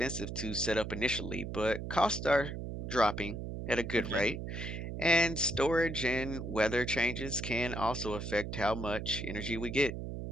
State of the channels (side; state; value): right; noise; hum, 6 dB below the sound